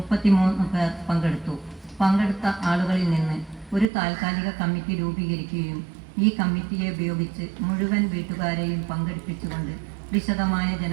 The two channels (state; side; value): drops out; left; at 3.9 s